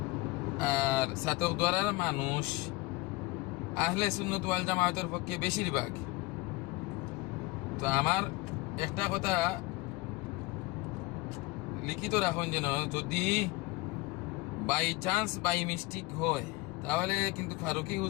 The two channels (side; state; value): right; quieter; 22.4 dB